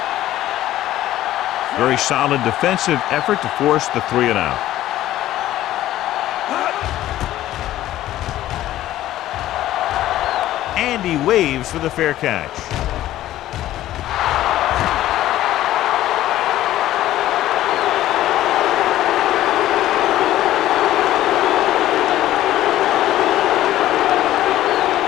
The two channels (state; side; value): quieter; right; 14.0 dB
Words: Very solid defensive effort to force the 3-and-out. And he waves for the fair catch.